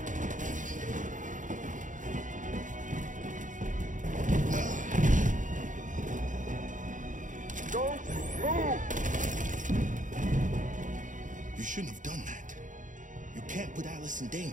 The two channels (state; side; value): late; left; 0.37 ms